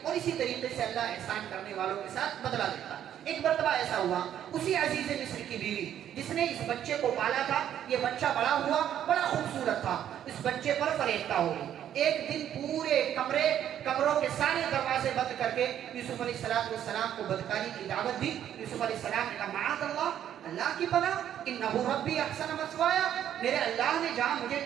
اور اسی طریقے سے اللہ احسان کرنے والوں کے ساتھ بدلہ دیتا۔ ایک مرتبہ ایسا ہوا، اسی عزیز مصر کی بیوی جس نے اس بچے کو پالا تھا، یہ بچہ بڑا ہوا، بڑا خوبصورت تھا، اس بچے پر فریفتہ ہو گئی۔ ایک دن پورے کمروں کے سارے دروازے بند کر کے یوسف علیہ السلام کو بدکاری کی دعوت دی۔ یوسف علیہ السلام نے کہا معاذ اللہ کی پناہ، انہ ربی احسن مثوایا، میرے اللہ نے جہاں مجھے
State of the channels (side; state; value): left; quieter; 10.4 dB